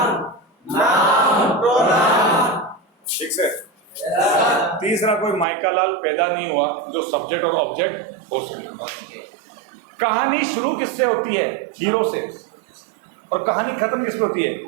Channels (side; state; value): left; drops out; at 5.5 s